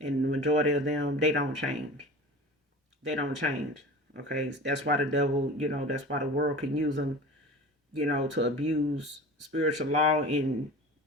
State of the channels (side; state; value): both; normal; correlation 0.37